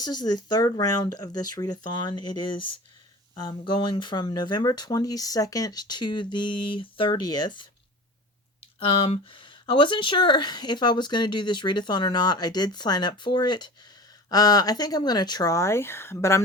is the third round of this readathon. It is going from November 22nd to the 30th. I wasn't sure if I was going to do this readathon or not. I did sign up for it. I think I'm going to try, but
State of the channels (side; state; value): both; normal; correlation 0.37